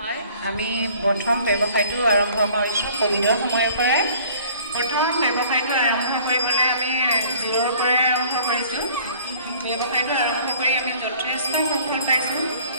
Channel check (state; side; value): inverted; both; correlation -0.52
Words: আমি প্ৰথম ব্যৱসায়টো আৰম্ভ কৰিছোঁ ক'ভিডৰ সময়ৰ পৰাই। প্ৰথম ব্যৱসায়টো আৰম্ভ কৰিবলৈ আমি জিৰ'ৰ পৰাই আৰম্ভ কৰিছোঁ। ব্যৱসায়টো আৰম্ভ কৰি আমি যথেষ্ট সফল পাইছোঁ।